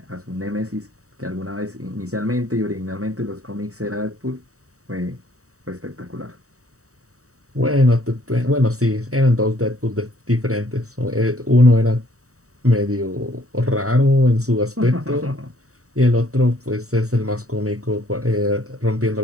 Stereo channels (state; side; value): late; left; 0.65 ms